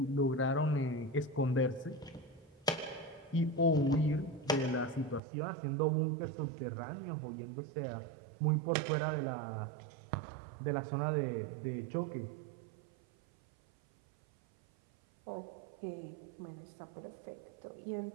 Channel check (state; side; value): drops out; left; at 5.2 s